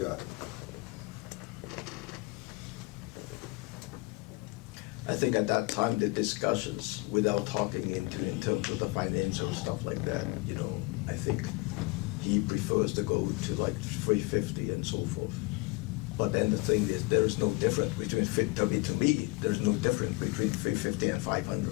I think at that time, the discussions, without talking in terms of the financial stuff like that, I think he prefers to go to like 350 and so forth. But then the thing is, there is no difference between, to me, there's no difference between 350 and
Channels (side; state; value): right; quieter; 24.3 dB